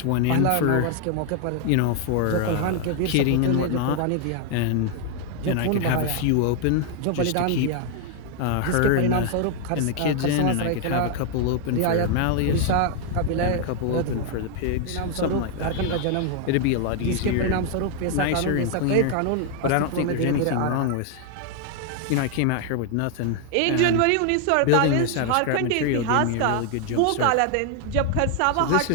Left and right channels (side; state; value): both; different; correlation 0.00